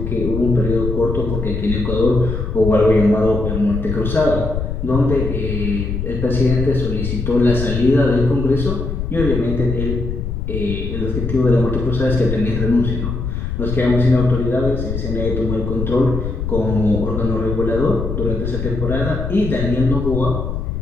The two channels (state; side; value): noise; left; rumble, 4 dB below the sound